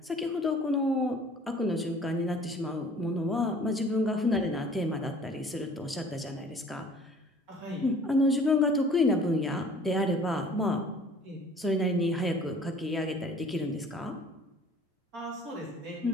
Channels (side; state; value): both; normal; correlation 0.51